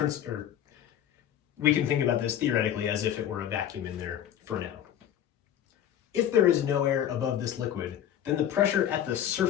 we can think about this theoretically as if it were a vacuum in there for now. If there is no air above this liquid, then the pressure at the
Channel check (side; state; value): right; quieter; 10.5 dB